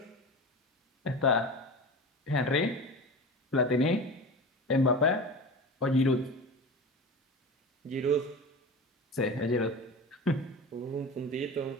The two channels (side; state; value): both; normal; correlation 0.30